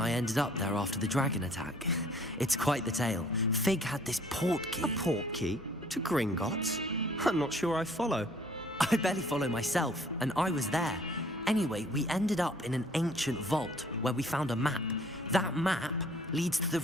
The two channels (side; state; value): both; normal; correlation 0.57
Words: ended up there after the dragon attack. It's quite the tale. Fig had this port key. A port key? To Gringotts? I'm not sure I follow. I barely follow myself, and I was there. Anyway, we ended up in an ancient vault where we found a map. That map leads to the